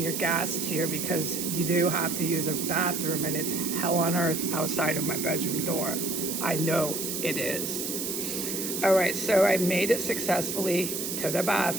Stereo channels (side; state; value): right; noise; hiss, 3 dB below the sound